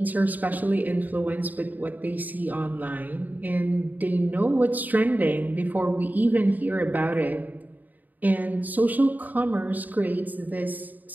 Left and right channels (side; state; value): left; late; 0.083 ms